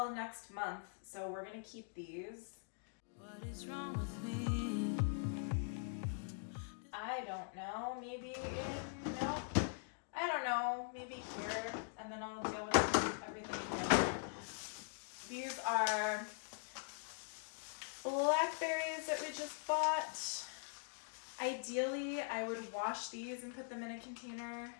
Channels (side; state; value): right; silent; digital silence